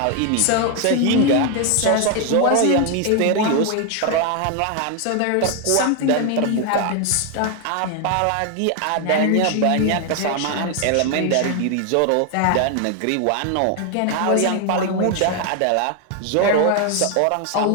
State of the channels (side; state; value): both; different; correlation 0.01